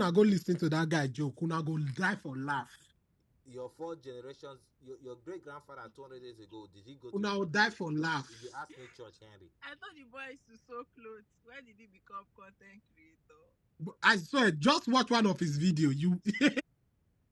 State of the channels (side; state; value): both; identical; correlation 1.00